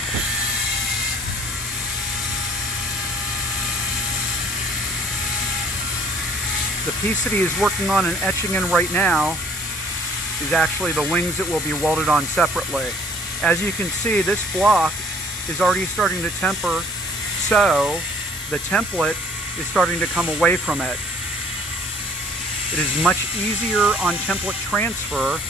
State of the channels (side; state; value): both; normal; correlation 0.56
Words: The piece that he is working on and etching in right now is actually the wings that will be welded on separately. As you can see, this block is already starting to temper, so the template is starting to come away from it. It is much easier on template transfer